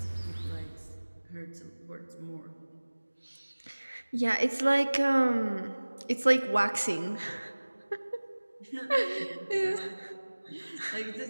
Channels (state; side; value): inverted; both; correlation -1.00